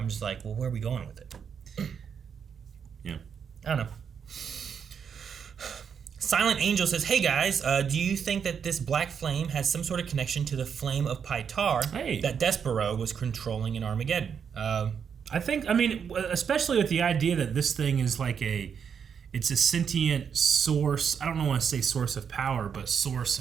just like, well, where are we going with it? Yeah. I don't know. Silent Angel says, hey guys, do you think that this black flame has some sort of connection to the flame of Pytar that Despero was controlling in Armageddon? I think, I mean, especially with the idea that this thing is like it's a sentient source. I don't want to say source of power, but source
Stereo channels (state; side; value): quieter; left; 7.2 dB